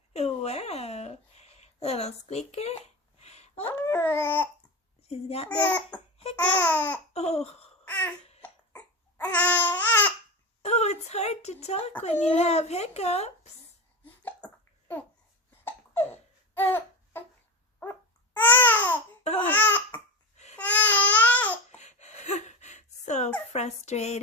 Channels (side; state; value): both; normal; correlation 0.23